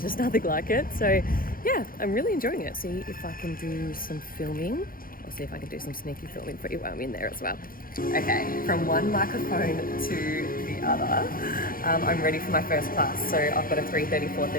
just nothing like it. So yeah, I'm really enjoying it. See if I can do some filming. I'll see if I can do some sneaky filming for you while I'm in there as well. Okay, from one microphone to the other, I'm ready for my first class. So I've got a 3:30,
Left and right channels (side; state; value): right; late; 0.42 ms